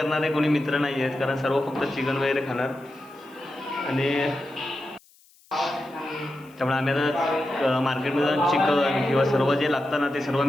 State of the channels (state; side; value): noise; left; hiss, 29 dB below the sound